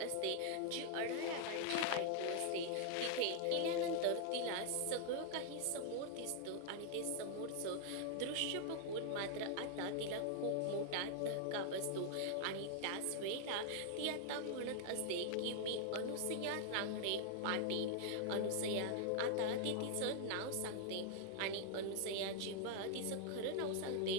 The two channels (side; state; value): both; different; correlation 0.00